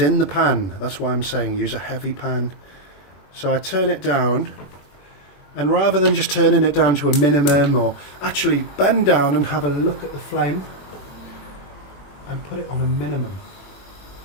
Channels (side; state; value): right; late; 21 ms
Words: the pan. That's why I'm saying use a heavy pan. So I turn it down, and rather than just turning it down to a minimum, or actually bend down and have a look at the flame and put it on a minimum.